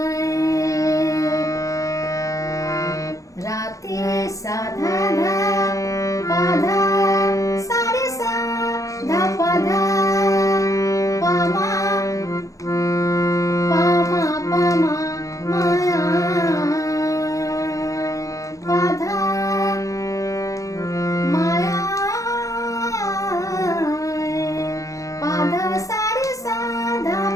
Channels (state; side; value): late; right; 0.16 ms